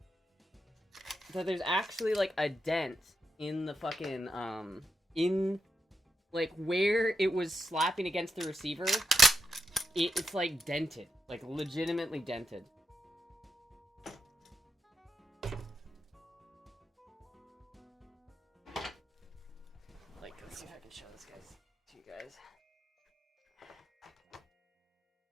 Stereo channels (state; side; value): normal; both; correlation 0.85